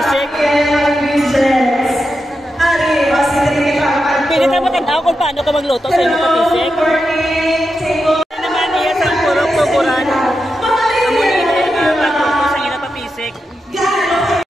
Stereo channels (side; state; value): both; normal; correlation 0.88